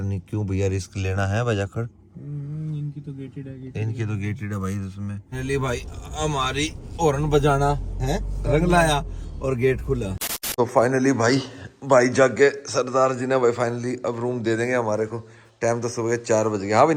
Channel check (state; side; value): identical; both; correlation 1.00